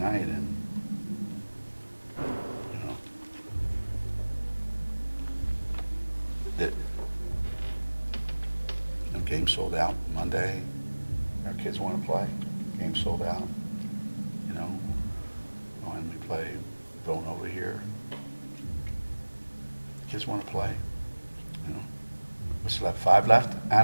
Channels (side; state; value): both; inverted; correlation -1.00